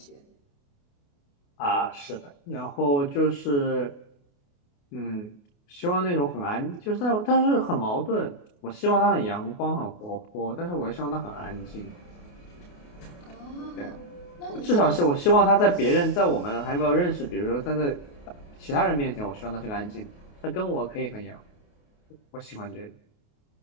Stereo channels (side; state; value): right; late; 28 ms